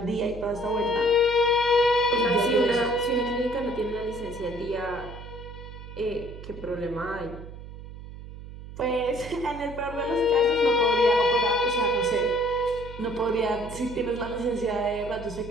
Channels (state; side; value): noise; right; hum, 13 dB below the sound